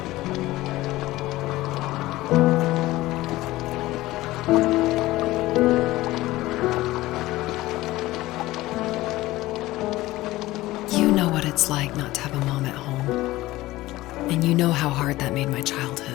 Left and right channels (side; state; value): right; quieter; 17.7 dB